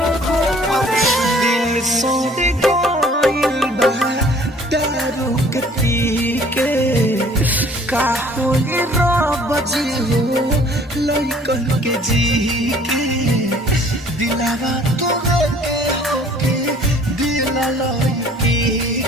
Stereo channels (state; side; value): normal; both; correlation 0.54